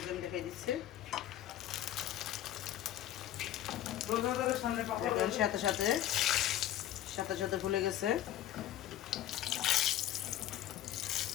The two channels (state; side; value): quieter; right; 12.5 dB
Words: আমি দেখাই দিচ্ছি। সাথে সাথে ফুলে গেছে।